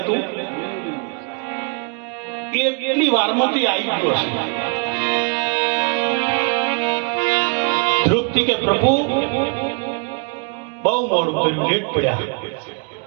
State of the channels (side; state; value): left; quieter; 34.3 dB